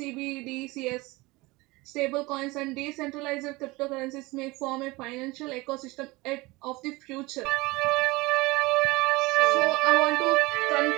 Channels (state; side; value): quieter; left; 22.7 dB